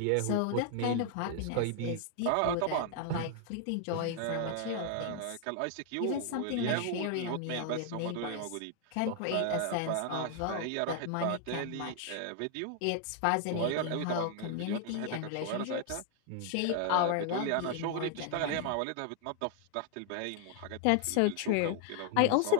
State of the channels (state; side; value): different; both; correlation 0.00